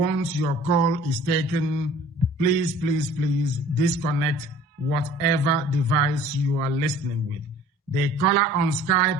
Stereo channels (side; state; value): both; normal; correlation 0.49